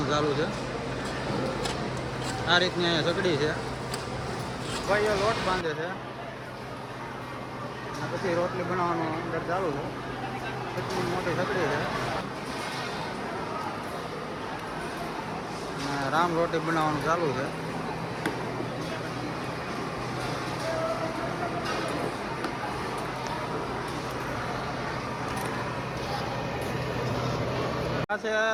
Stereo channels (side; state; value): both; identical; correlation 1.00